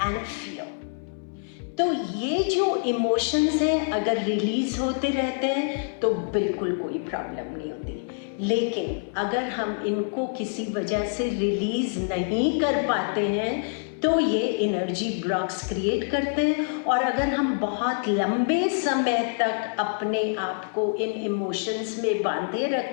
and fear. तो ये जो इमोशंस हैं अगर रिलीज होते रहते हैं तो बिल्कुल कोई प्रॉब्लम नहीं होती, लेकिन अगर हम इनको किसी वजह से रिलीज नहीं कर पाते हैं तो ये एनर्जी ब्लॉक्स क्रिएट करते हैं, और अगर हम बहुत लंबे समय तक अपने आप को इन इमोशंस में बांधे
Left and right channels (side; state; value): right; silent; 61 dB below the other